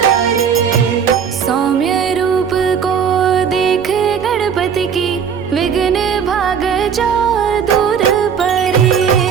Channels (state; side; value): quieter; left; 7.2 dB